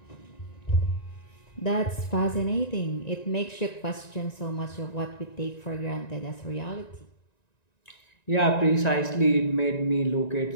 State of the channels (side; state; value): right; late; 1.9 ms